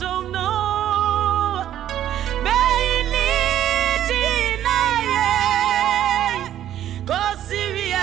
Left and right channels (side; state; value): left; quieter; 11.5 dB